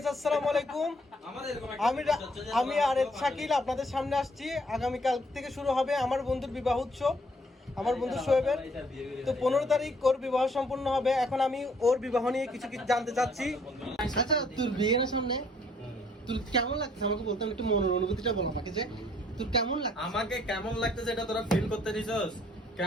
আসসালামু আলাইকুম। আমি আরেফ শাকিল আপনাদের সামনে আসছি। আগামীকাল থেকে শুরু হবে আমার বন্ধুর বিবাহ উৎসব, আমার বন্ধু শোয়েবের। তো 15 তারিখ ওর বিবাহ সম্পূর্ণ হবে। এখন আমি ওর বিবাহ নিয়ে কিছু কিছু জানতে চাচ্ছি। আচ্ছা, তোর বিয়ের সামনে তোর কেমন লাগছে আমাকে বলতাম, একটু মনের অনুভূতিটা বল আমাকে, যে তোর কেমন লাগছে। আমাকে কেমন লাগতেছে এটা তোরা ফিল করতে দিছস?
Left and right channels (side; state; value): both; normal; correlation 0.64